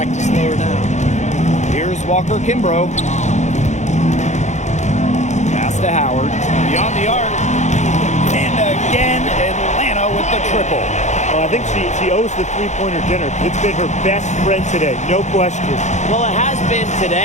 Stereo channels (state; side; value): late; right; 0.34 ms